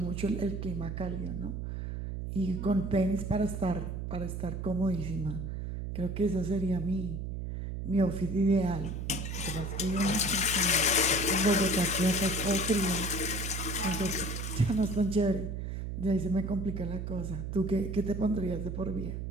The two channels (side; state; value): right; noise; hum, 4 dB below the sound